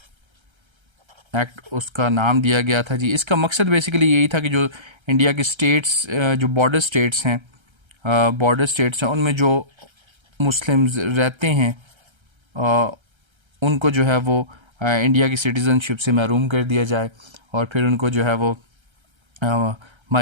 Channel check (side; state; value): left; late; 1.3 ms